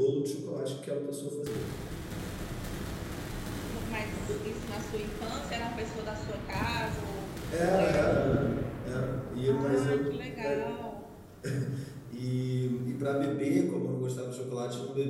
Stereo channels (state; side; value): identical; both; correlation 1.00